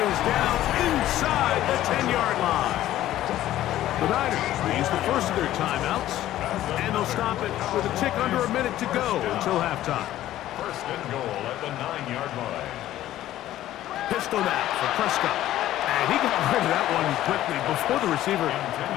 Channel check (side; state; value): right; quieter; 13.7 dB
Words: is down inside the 10-yard line. The Niners will use the first of their timeouts, and they'll stop it with a tick under a minute to go until halftime. 1st and goal at the 9-yard line. Pistol now for Prescott. And he got rid of that one quickly before the receiver